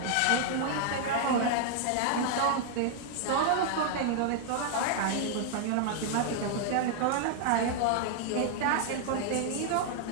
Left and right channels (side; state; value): both; different; correlation 0.00